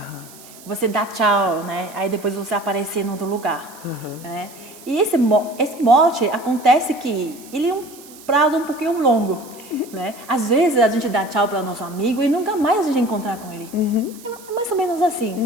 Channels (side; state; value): right; noise; hiss, 20 dB below the sound